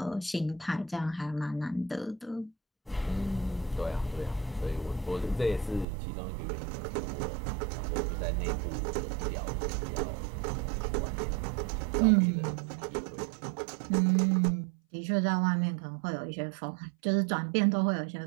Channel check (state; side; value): drops out; left; at 5.9 s